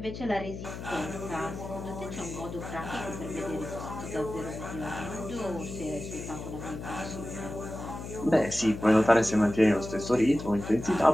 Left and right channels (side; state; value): left; noise; hum, 9 dB below the sound